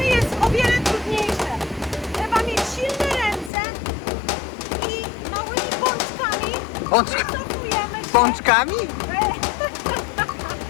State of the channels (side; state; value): right; drops out; at 3.5 s